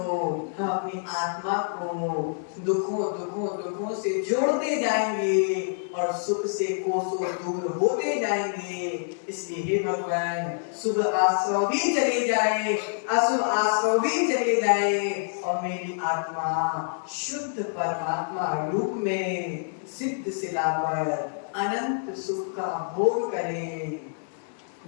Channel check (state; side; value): silent; right; digital silence